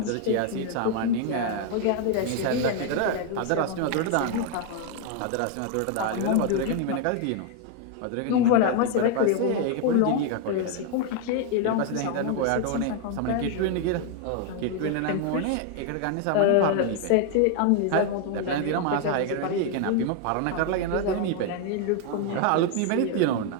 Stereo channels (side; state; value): both; different; correlation 0.00